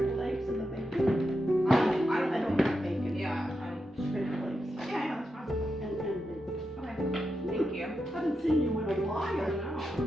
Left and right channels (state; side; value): normal; both; correlation 0.87